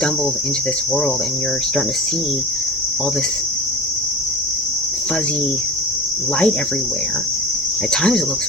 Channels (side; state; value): both; normal; correlation 0.32